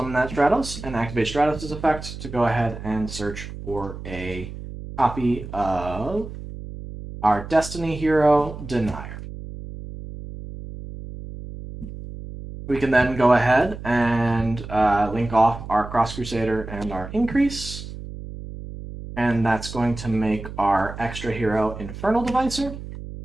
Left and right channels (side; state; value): right; noise; hum, 11 dB below the sound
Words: that Stratos and activate Stratos' effect to go ahead and search for a copy of our Destiny Hero Denier. We can then go ahead and link off our Cross Crusader and our Increase. And that's going to make our extra hero Infernal Devicer.